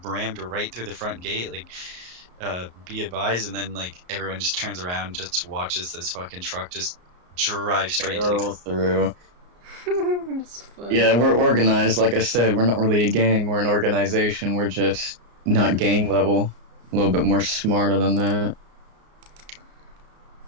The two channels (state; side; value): late; left; 34 ms